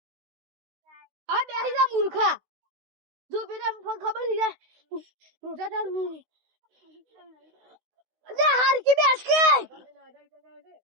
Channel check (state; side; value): late; left; 16 ms